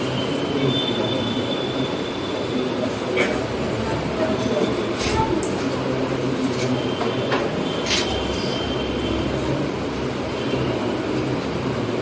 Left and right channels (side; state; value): both; identical; correlation 1.00